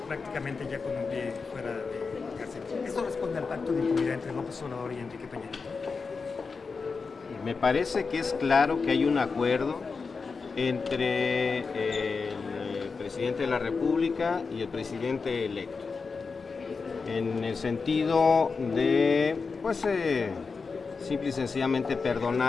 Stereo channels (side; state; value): right; quieter; 4.8 dB